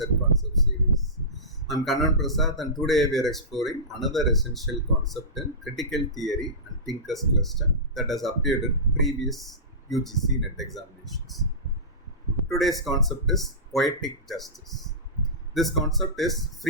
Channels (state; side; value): normal; both; correlation -0.19